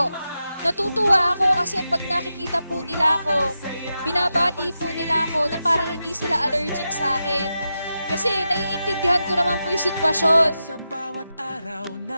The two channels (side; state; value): both; inverted; correlation -0.89